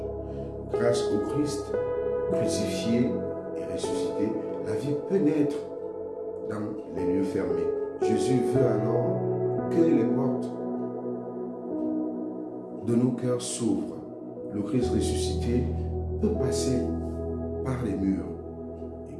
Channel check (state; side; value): identical; both; correlation 1.00